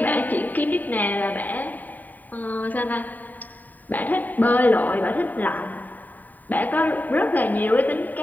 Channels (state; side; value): late; right; 0.085 ms